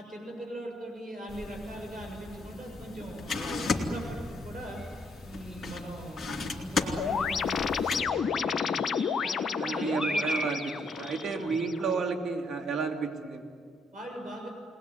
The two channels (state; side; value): normal; both; correlation 0.71